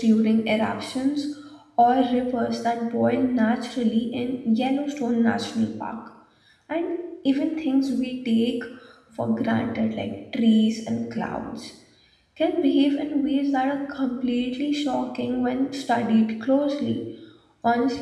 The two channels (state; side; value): identical; both; correlation 1.00